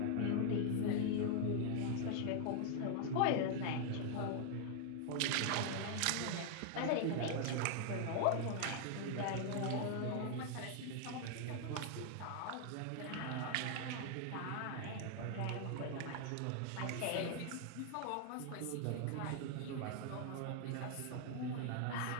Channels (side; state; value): both; different; correlation 0.00